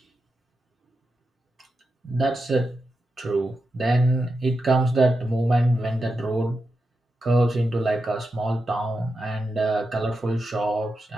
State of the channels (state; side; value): normal; both; correlation 0.88